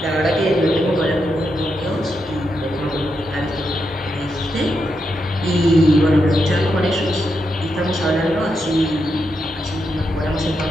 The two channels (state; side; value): normal; both; correlation 0.84